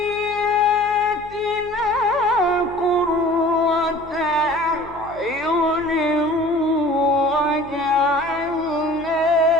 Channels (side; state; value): left; noise; hum, 21 dB below the sound